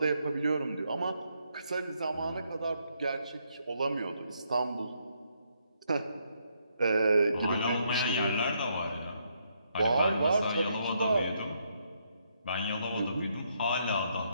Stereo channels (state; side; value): inverted; both; correlation -0.75